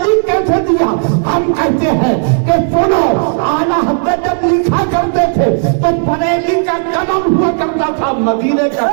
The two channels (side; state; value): left; silent; 57 dB below the other